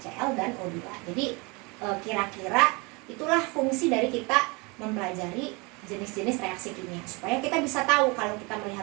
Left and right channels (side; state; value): left; quieter; 28.1 dB